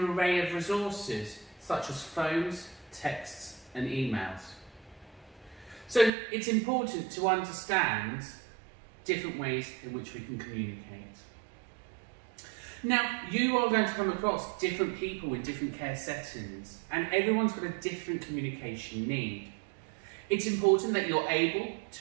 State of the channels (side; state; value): left; drops out; at 6.1 s